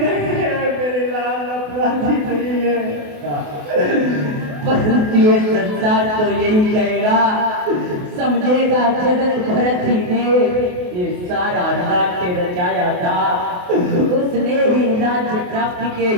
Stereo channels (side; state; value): left; late; 28 ms